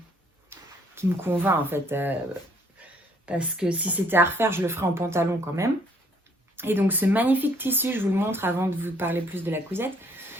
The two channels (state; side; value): normal; both; correlation 0.64